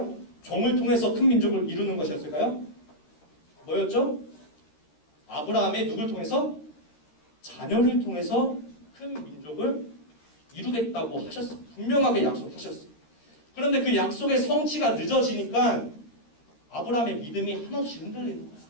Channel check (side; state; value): right; late; 13 ms